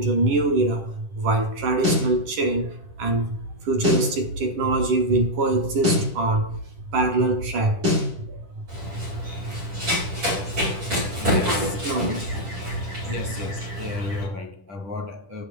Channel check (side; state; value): left; late; 10 ms